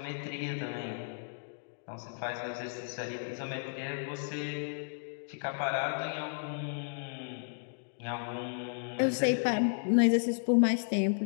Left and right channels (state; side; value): silent; right; digital silence